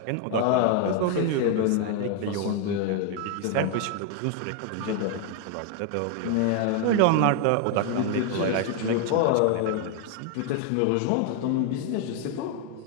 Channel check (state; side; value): different; both; correlation 0.00